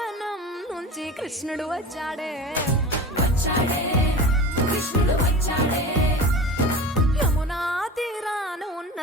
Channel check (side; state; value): both; normal; correlation 0.33